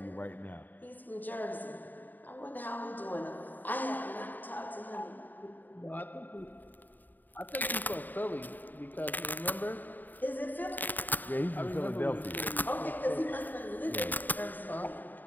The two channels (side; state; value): right; late; 0.088 ms